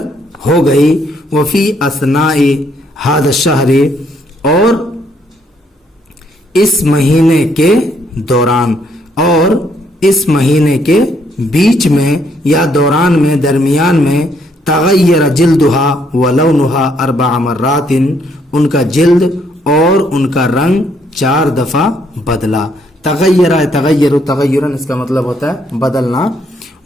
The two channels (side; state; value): both; normal; correlation 0.70